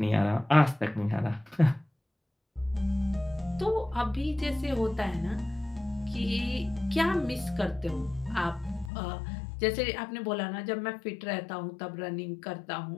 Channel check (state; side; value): drops out; right; at 8.9 s